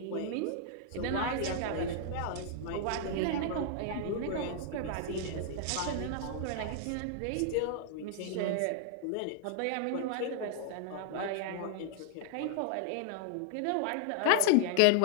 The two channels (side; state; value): both; different; correlation -0.01